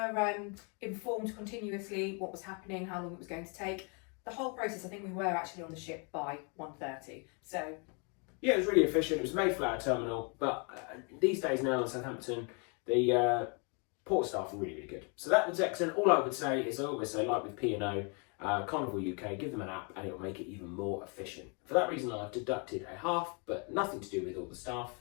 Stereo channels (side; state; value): right; quieter; 35.7 dB